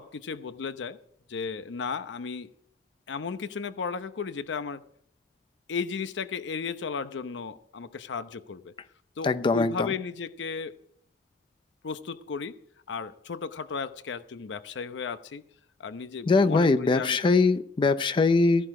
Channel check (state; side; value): quieter; right; 3.6 dB